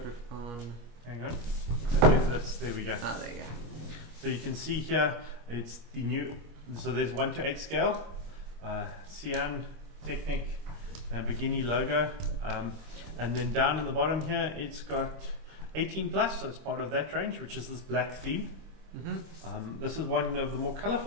it on. Hang on. There we go. Ah, there you go. So you can see here, it's the new. So there's 1:8 scale, Sián Technic, Lamborghini logo, and then down in the bottom here, it's got 18 plus. So it's part of that range, which is this black theme. This is one of the more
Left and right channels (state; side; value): late; left; 25 ms